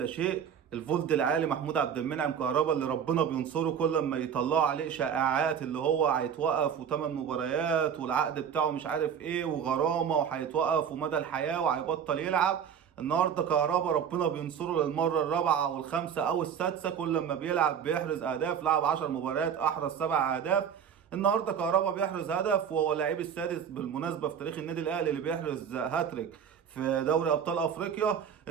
شيء. الفولد العالي محمود عبد المنعم كهربا اللي ربنا بينصره كل ما يطلعوا عليه شائعات اللي هو هيتوقف وثمان مباريات والعقد بتاعه مش عارف ايه وغرامه وهيتوقف ومدى الحياه وهيبطل يلعب. النهارده كهربا ربنا بينصره للمره الرابعه او الخامسه او السادسه، كل ما بيلعب بيحرز اهداف. لعب 10 مباريات احرز 7 اهداف. النهارده كهربا بيحرز هدف وهو اللاعب السادس بالمناسبه في تاريخ النادي الاهلي اللي بيحرز هاتريك في دوري ابطال افريقيا.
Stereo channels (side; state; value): left; quieter; 7.9 dB